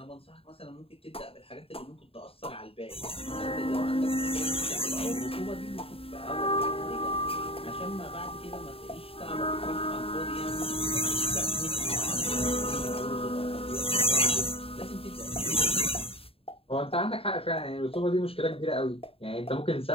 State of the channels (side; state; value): right; late; 0.27 ms